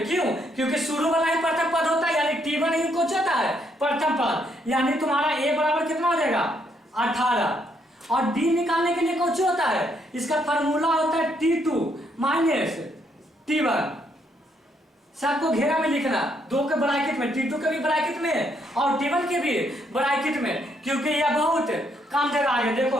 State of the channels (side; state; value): both; normal; correlation 0.73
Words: क्यों? क्योंकि शुरू वाला ही प्रथम पद होता है, यानी T1 ही कुछ होता है प्रथम पद, यानी तुम्हारा A बराबर कितना हो जाएगा 18। और D निकालने के लिए कुछ होता है, इसका फार्मूला होता है T2 माइनस T1। सबको घेरा में लिखना, दो के ब्रैकेट में, T2 के भी ब्रैकेट में और T1 के भी ब्रैकेट में, क्योंकि यह बहुत काम देगा आगे। देखो